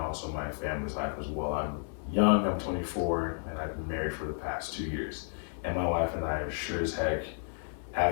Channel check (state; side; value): silent; right; 56 dB below the other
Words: my family's life as well. I'm young, I'm 24, and I've been married for the past 2 years. And my wife and I sure as heck